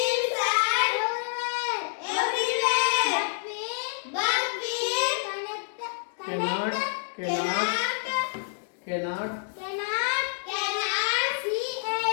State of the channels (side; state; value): right; silent; digital silence